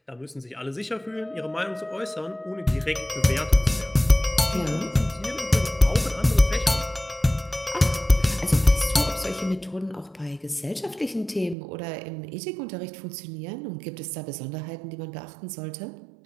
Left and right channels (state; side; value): drops out; left; at 11.6 s